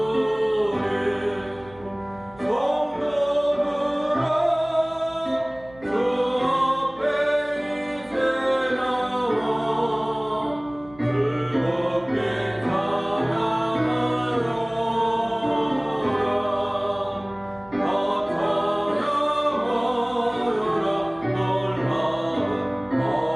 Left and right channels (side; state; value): right; noise; hum, 23 dB below the sound